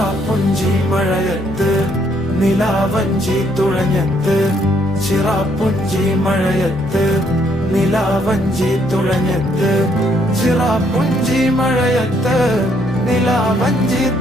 മഴയത്ത് നിലാവഞ്ചി തുഴഞ്ഞത്ത്, ചിറാപ്പുഞ്ചി മഴയത്ത് നിലാവഞ്ചി തുഴഞ്ഞത്ത്, ചിറാപ്പുഞ്ചി മഴയത്ത് നിലാവഞ്ചി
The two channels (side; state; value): both; normal; correlation 0.70